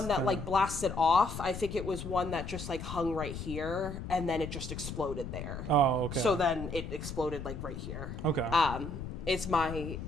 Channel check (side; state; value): left; noise; rumble, 8 dB below the sound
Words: that like blasted off. I think it was one that just like hung right here and then it just exploded there. Oh, okay. So then it exploded like right here. Okay. Is my